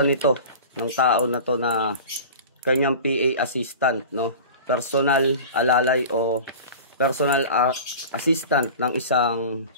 nito ng tao na to na kanyang PA assistant, no? Personal alalay o personal assistant ng isang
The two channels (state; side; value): inverted; both; correlation -0.36